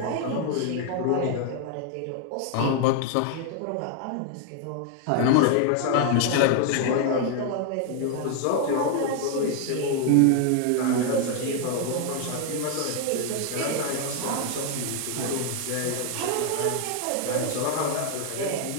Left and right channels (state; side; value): different; both; correlation 0.00